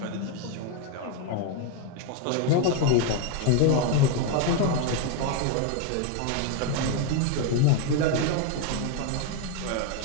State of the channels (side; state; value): both; different; correlation 0.01